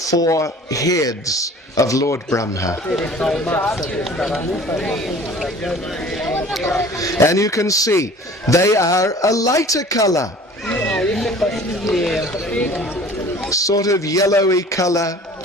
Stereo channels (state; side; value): normal; both; correlation 0.46